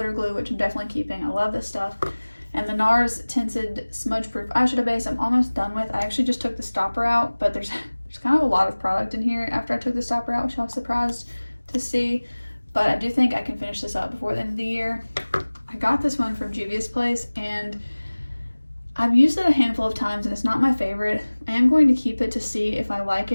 glue, which I'm definitely keeping. I love this stuff. And the NARS tinted smudge proof eyeshadow base I'm almost done with. I actually just took the stopper out, but there's kind of a lot of product in here after I took the stopper out, which I was surprised to see. But I do think I can finish this up before the end of the year. I got this one from Juvia's Place and I've used it a handful of times and it's not my favorite. I am going to keep it to see if I like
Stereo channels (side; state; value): both; inverted; correlation -1.00